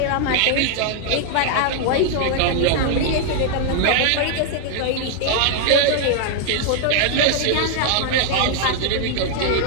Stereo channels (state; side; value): different; both; correlation 0.00